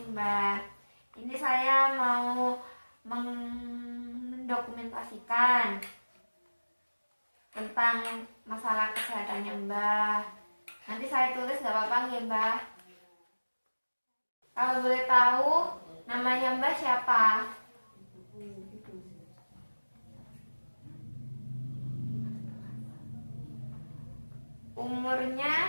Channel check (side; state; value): both; inverted; correlation -1.00